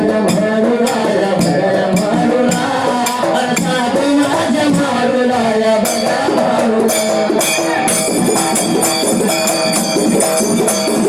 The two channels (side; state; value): both; identical; correlation 1.00